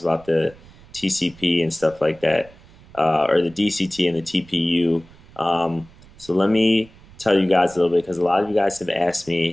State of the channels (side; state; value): right; noise; rumble, 24 dB below the sound